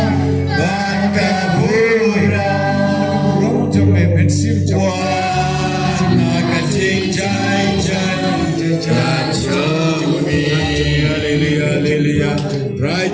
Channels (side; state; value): both; identical; correlation 1.00